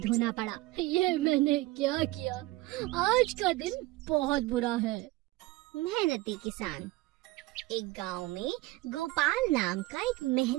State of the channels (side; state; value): left; quieter; 19.4 dB